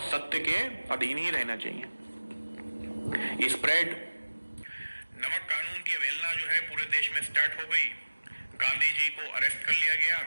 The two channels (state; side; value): inverted; both; correlation -1.00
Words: सत्य के अधीन ही रहना चाहिए। स्प्रेड नमक कानून की अवहेलना जो है पूरे देश में स्टार्ट हो गई। गांधी जी को अरेस्ट कर लिया गया,